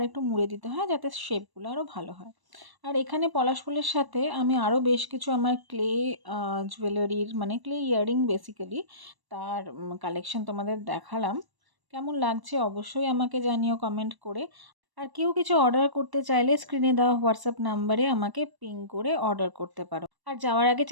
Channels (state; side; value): late; left; 1.1 ms